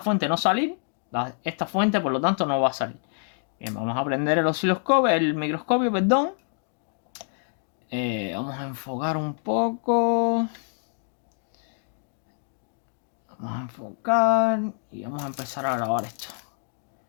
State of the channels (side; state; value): right; silent; digital silence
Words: no salir, esta fuente por lo tanto no va a salir. Bien, vamos a prender el osciloscopio, el microscopio, perdón. Vamos a enfocar un poco. Vamos a enfocar y vamos a empezar a grabar esto.